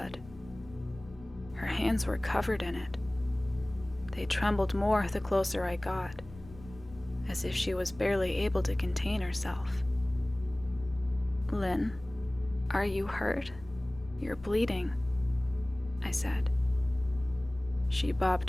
Her hands were covered in it. They trembled more the closer I got, as if she was barely able to contain herself. Lynn, are you hurt? You're bleeding, I said. She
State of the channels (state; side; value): noise; left; rumble, 19 dB below the sound